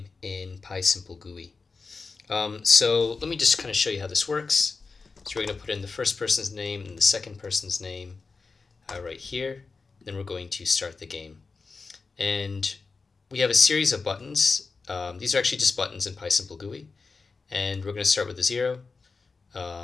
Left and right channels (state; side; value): quieter; right; 4.3 dB